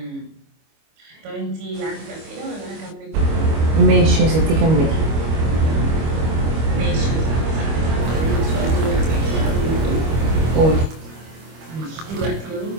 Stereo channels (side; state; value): left; late; 25 ms